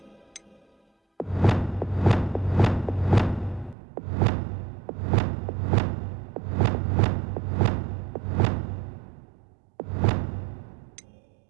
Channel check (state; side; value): drops out; left; at 3.8 s